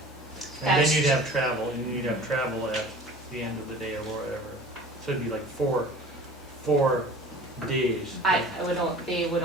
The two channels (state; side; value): normal; both; correlation 0.43